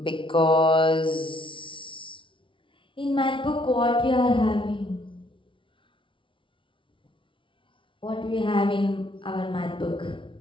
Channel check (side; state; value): right; late; 0.25 ms